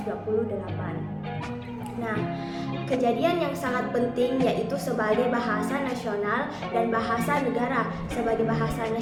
Nah, kejadian yang sangat penting yaitu sebagai bahasa nasional dan bahasa negara. Sebagai bahasa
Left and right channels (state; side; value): identical; both; correlation 1.00